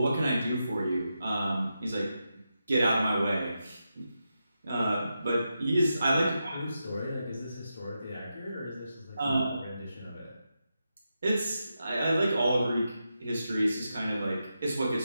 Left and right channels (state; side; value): inverted; both; correlation -0.87